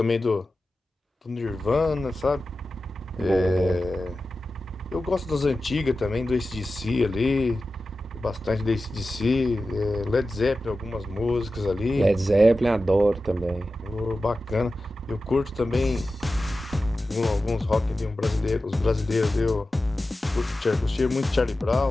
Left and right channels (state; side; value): normal; both; correlation 0.94